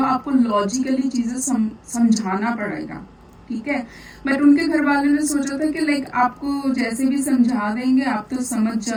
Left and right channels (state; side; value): identical; both; correlation 1.00